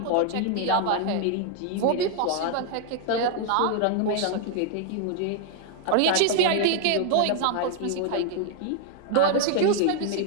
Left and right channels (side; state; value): both; different; correlation 0.00